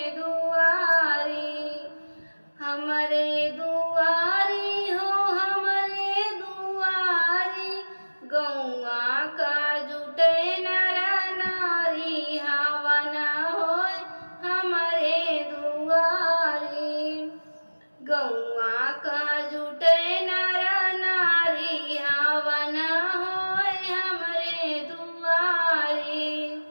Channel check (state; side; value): inverted; both; correlation -1.00